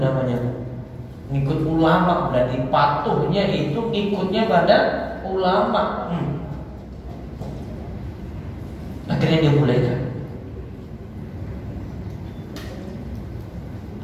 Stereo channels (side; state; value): both; identical; correlation 1.00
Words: Ngikut ulama, berarti patuhnya itu ngikutnya pada ulama. Akhirnya dia bolehkan